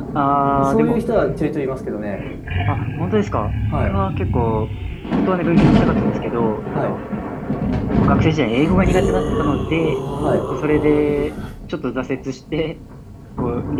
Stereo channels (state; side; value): identical; both; correlation 1.00